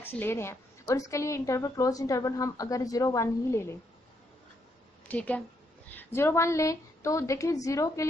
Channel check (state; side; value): normal; both; correlation 0.75